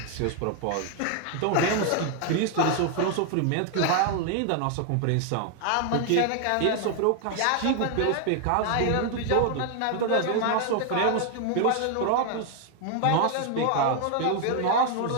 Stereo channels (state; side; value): different; both; correlation 0.00